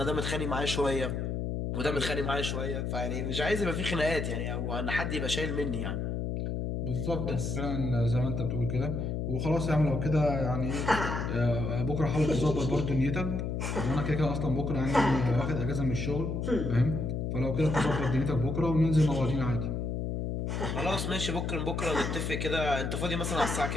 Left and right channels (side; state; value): left; noise; hum, 2 dB below the sound